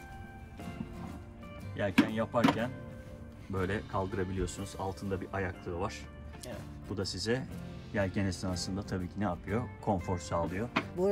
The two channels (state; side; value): identical; both; correlation 1.00